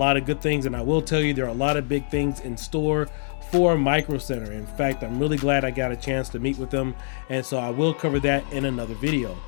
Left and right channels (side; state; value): right; silent; digital silence